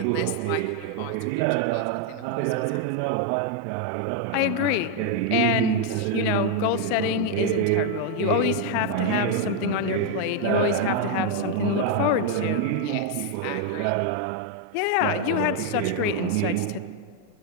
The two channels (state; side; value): different; both; correlation 0.01